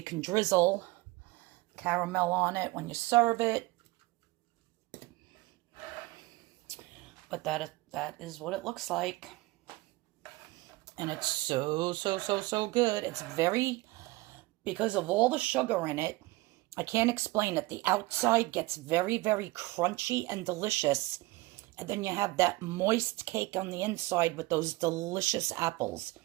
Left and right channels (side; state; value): left; quieter; 21.3 dB